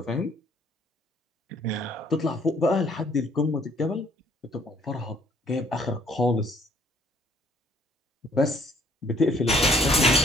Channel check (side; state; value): both; normal; correlation 0.62